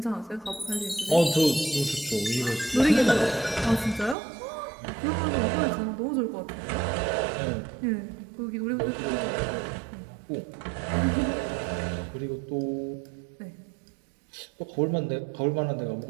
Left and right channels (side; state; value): left; drops out; at 4.2 s